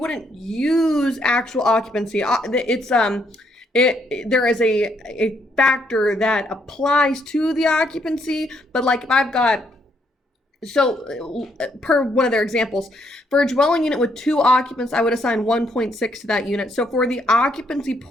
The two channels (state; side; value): normal; both; correlation 0.73